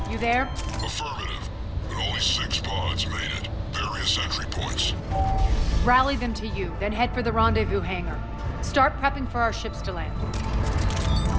you there? Affirmative, but only 6 pods made it. Various entry points. Rally them to you, then head for the rendezvous hangar. Start prepping for our ships to land.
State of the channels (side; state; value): both; identical; correlation 1.00